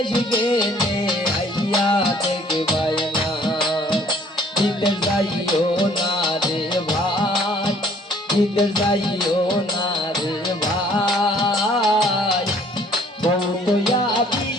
গেলে আইয়া দেখবাই না। বিদেশ যাইও না রে ভাই, বিদেশ যাইও না রে ভাই, কৌতয়া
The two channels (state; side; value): normal; both; correlation 0.57